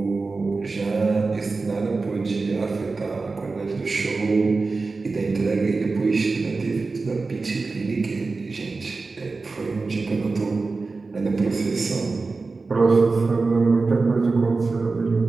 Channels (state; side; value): quieter; left; 3.9 dB